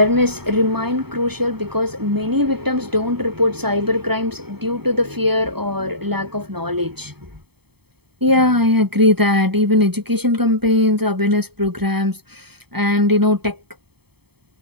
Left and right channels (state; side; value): late; left; 0.97 ms